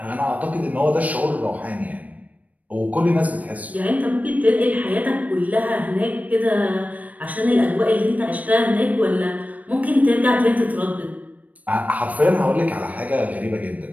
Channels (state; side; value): late; left; 0.072 ms